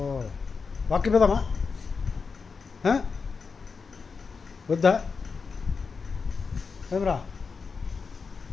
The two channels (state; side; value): quieter; right; 5.1 dB